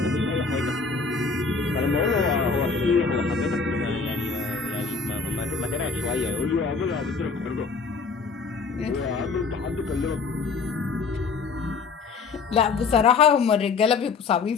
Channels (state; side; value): quieter; right; 4.7 dB